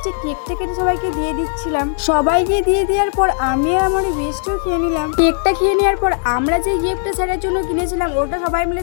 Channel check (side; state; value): right; silent; digital silence